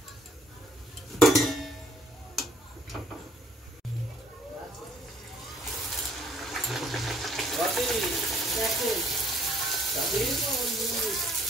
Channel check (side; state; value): both; normal; correlation 0.62